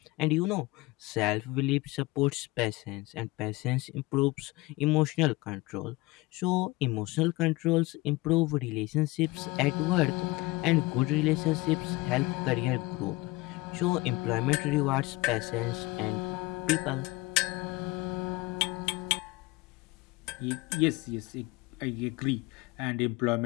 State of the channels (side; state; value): right; quieter; 21.5 dB